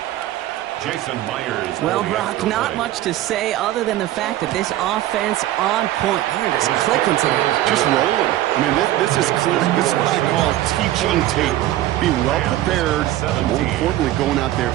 Jason Myers. Well, Brock, not much to say other than the fact that this offense on point. They're just clicking today. Just rolling. I mean, this is clear. This is what I call teaching tape. Being well prepared, and more importantly, going out there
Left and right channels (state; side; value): quieter; left; 14.3 dB